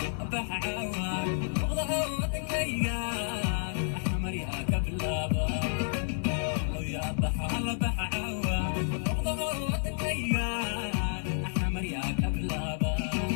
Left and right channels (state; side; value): silent; right; digital silence